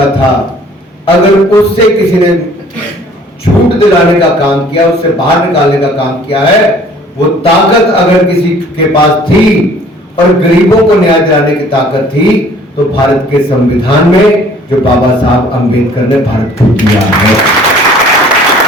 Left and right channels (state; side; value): normal; both; correlation 0.54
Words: था, अगर उससे किसी ने छूट दिलाने का काम किया, उससे बाहर निकालने का काम किया है, वो ताकत अगर किसी के पास थी और गरीबों को न्याय दिलाने की ताकत थी तो भारत के संविधान में जो बाबा साहब अंबेडकर ने भारत को दिया है।